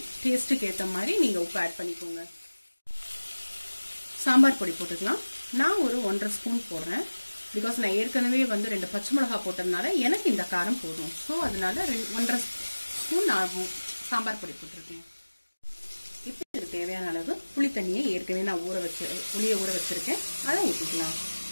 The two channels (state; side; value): inverted; both; correlation -1.00